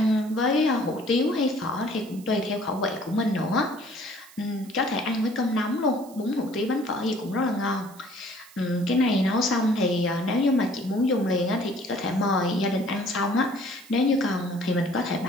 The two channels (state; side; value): noise; right; hiss, 22 dB below the sound